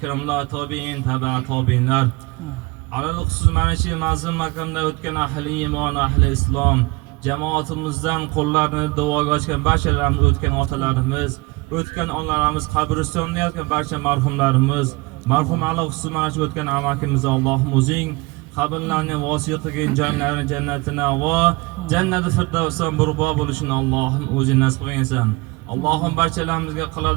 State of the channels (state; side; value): quieter; left; 24.7 dB